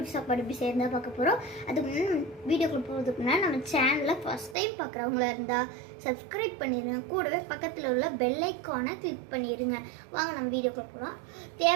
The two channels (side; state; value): left; drops out; at 4.5 s